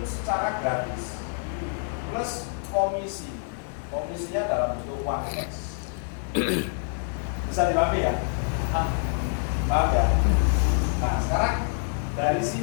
secara gratis plus komisi. Komisinya dalam bentuk uang cash. Bisa dipahami ya? Paham ya? Nah, sekarang dari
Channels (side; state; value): right; silent; 60 dB below the other